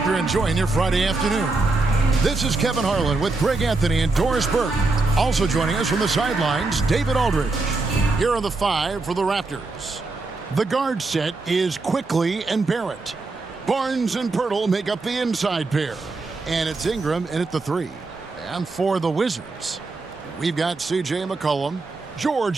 you're enjoying your Friday afternoon. This is Kevin Harlan with Greg Anthony and Doris Burke. Also joining us from the sidelines, David Aldridge. Here are the five for the Raptors. The guard set is Quickley and Barrett. Barnes and Pöltl make up the inside pair. And it's Ingram in at the three. And for the Wizards, we've got C.J. McCollum.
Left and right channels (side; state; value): left; quieter; 3.5 dB